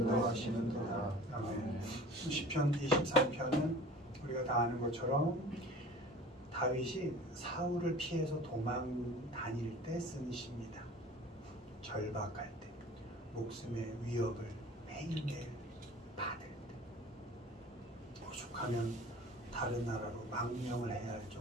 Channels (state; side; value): normal; both; correlation 0.43